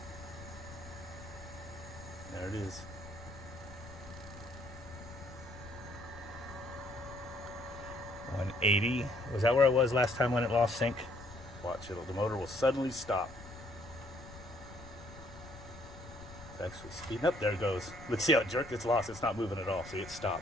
There it is. $180. Was that where it was last time when it lost sync? Watch it. The motor will suddenly stop. It's actually speeding up. There it goes. Let's see how it jerked. It's lost. It's not moving at all. See, it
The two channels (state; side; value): noise; left; rumble, 15 dB below the sound